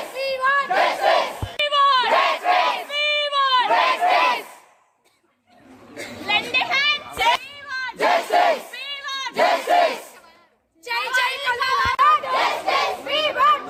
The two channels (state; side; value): identical; both; correlation 1.00